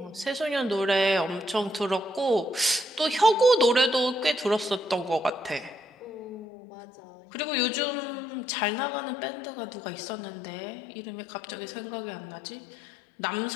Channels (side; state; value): right; drops out; at 6.5 s